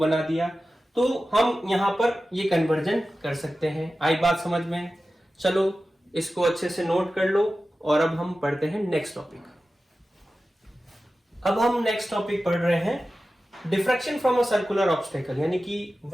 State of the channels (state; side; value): normal; both; correlation 0.94